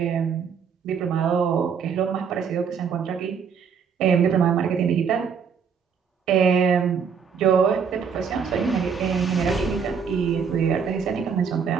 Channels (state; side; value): quieter; left; 6.6 dB